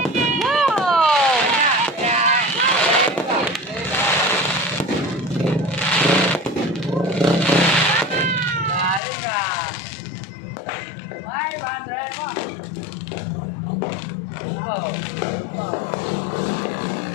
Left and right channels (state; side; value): drops out; right; at 9.0 s